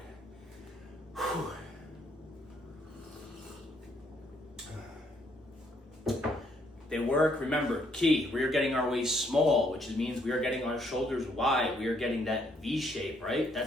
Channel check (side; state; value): both; normal; correlation 0.70